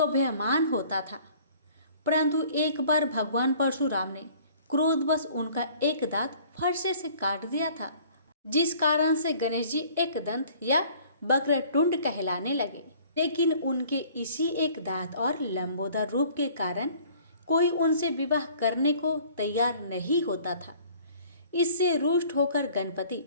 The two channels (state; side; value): inverted; both; correlation -0.53